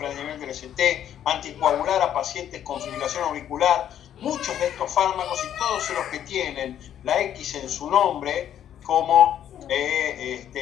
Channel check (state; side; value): quieter; right; 10.3 dB